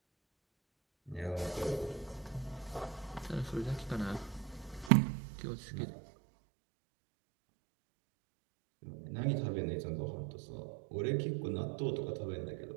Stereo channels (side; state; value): left; drops out; at 4.9 s